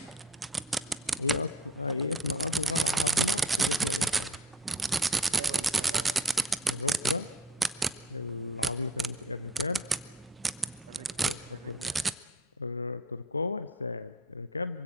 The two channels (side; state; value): both; normal; correlation 0.45